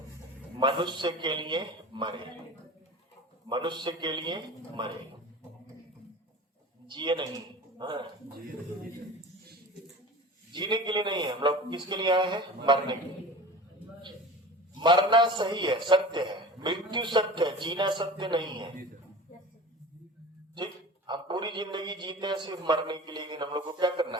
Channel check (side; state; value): both; normal; correlation 0.36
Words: मनुष्य के लिए मरे, मनुष्य के लिए मरे, जिए नहीं। हाँ, जीने के लिए नहीं है, हम लोग किसके लिए आए हैं? मरने के लिए। मरना सही है, सत्य है, मृत्यु सत्य है, जीना सत्य नहीं है। ठीक, हम पूरी जिंदगी जीते हैं सिर्फ मरने के लिए, लेकिन हम लोग को क्या करना